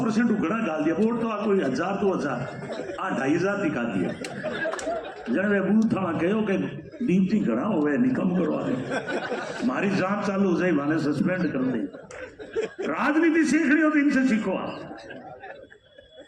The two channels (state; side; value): identical; both; correlation 1.00